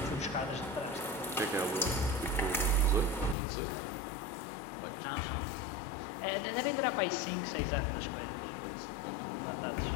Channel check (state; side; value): drops out; right; at 3.4 s